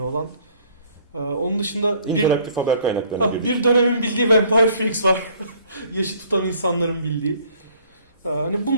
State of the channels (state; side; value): inverted; both; correlation -0.58